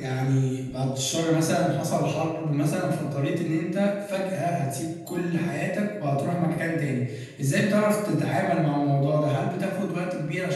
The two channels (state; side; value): identical; both; correlation 1.00